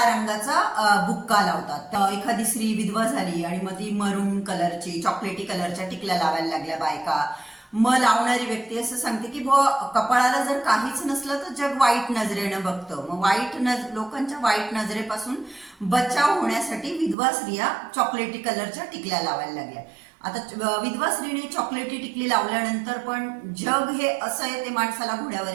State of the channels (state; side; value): drops out; left; at 17.2 s